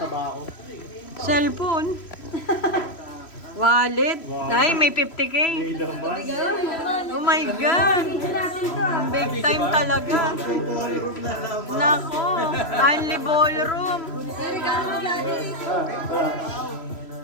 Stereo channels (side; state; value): right; late; 3.0 ms